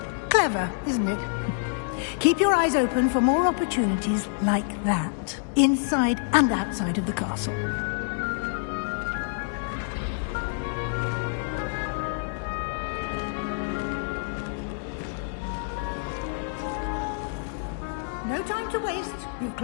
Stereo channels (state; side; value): silent; right; digital silence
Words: Clever, isn't it? Keep your eyes open for more opportunities like that, inside and outside of the castle. No time to waste. You've